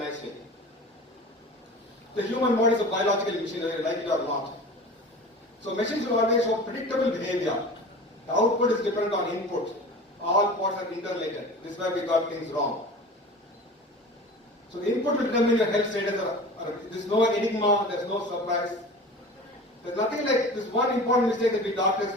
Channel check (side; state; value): both; normal; correlation 0.37